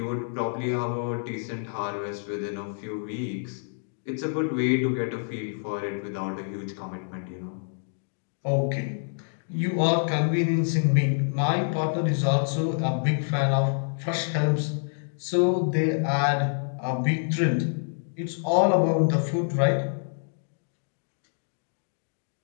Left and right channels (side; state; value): right; silent; digital silence